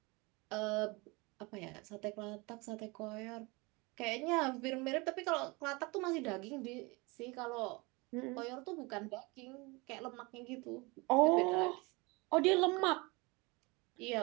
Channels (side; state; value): left; quieter; 26.1 dB